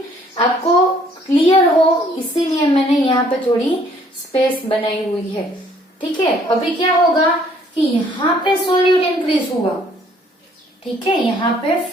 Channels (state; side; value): normal; both; correlation 0.61